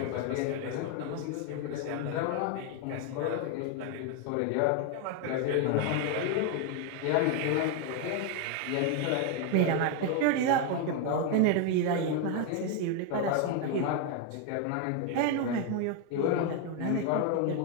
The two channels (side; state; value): both; different; correlation 0.01